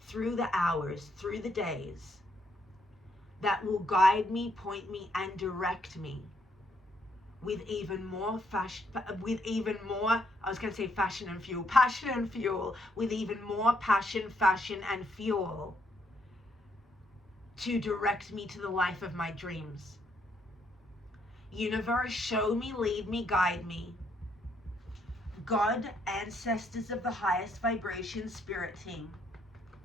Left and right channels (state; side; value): normal; both; correlation 0.73